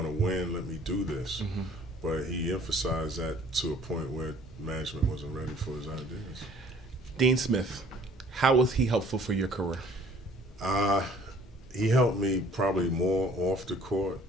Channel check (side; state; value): both; normal; correlation 0.55